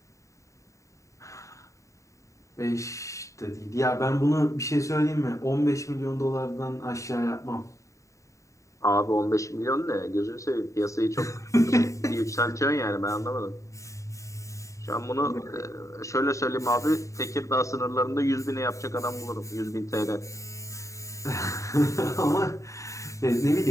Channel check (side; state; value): right; late; 0.15 ms